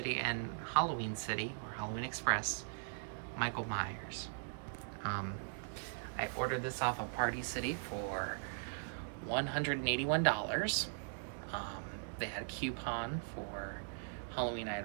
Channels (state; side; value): silent; left; digital silence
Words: and Halloween City, or Halloween Express, Michael Myers. I ordered this off of Party City for $181. They had a coupon for Halloween